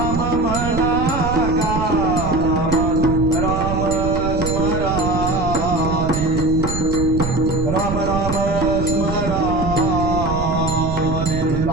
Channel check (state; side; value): noise; right; rumble, 4 dB below the sound